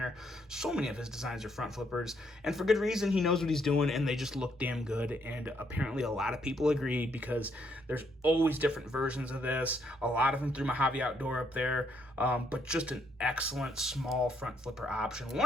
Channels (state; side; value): normal; both; correlation 0.72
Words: So many of his designs are front flippers, and for good reason. He knows what he's doing, and they just look damn good, and apparently a lot of people agree, because there's always different versions of this, a lot of them through Mojave Outdoor up there, but just an excellent small front flipper option.